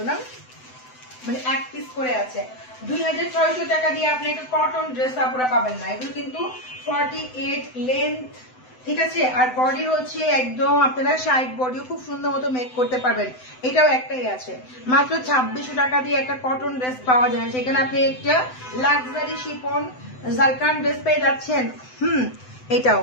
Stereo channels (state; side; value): late; right; 7.9 ms